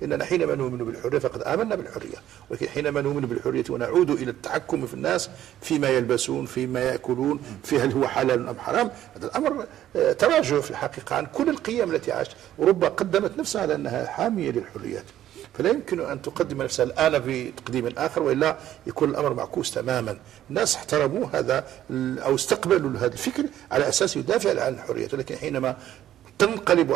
لأننا حينما نؤمن بالحرية فقد آمنا بالحرية، ولكن حينما نؤمن بالحرية ونعود إلى التحكم في الناس فيما يلبسون، فيما يأكلون، في هل هو حلال أم حرام، هذا الأمر تراجع في الحقيقة عن كل القيم التي عاشت. أوروبا قدمت نفسها على أنها حامية للحريات، فلا يمكن أن تقدم نفسها الآن بتقديم آخر، وإلا يكون الأمر معكوس تماما. الناس احترموا هذا أو استقبلوا هذا الفكر على أساس يدافع عن الحريات، ولكن حينما تنقلب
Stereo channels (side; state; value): left; quieter; 12.2 dB